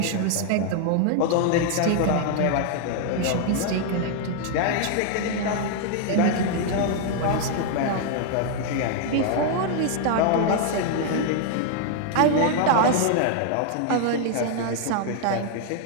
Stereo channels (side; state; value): both; different; correlation 0.00